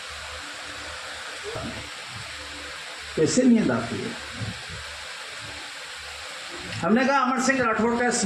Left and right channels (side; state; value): both; identical; correlation 1.00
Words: कैसे नींद आती है। हमने कहा अमर सिंह राठौड़ का